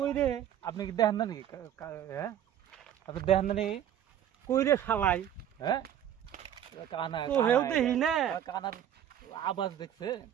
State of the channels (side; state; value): left; quieter; 10.4 dB